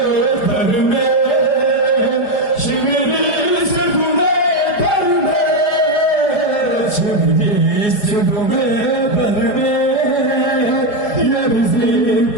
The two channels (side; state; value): right; late; 4.8 ms